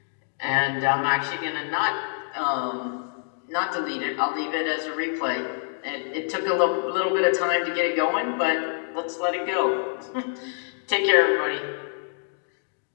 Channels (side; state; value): right; silent; digital silence